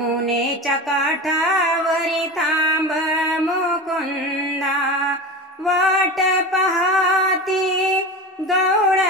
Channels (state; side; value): normal; both; correlation 0.28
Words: काठावरी थांब मुकुंद, वाट पाहती